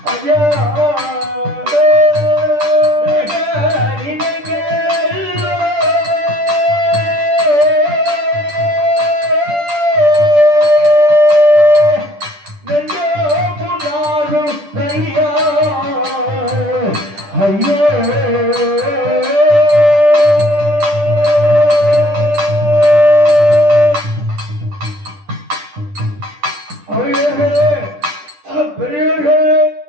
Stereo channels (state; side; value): late; left; 10 ms